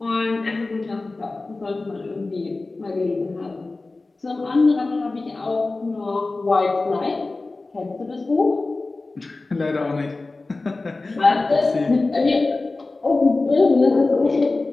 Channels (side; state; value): right; quieter; 3.4 dB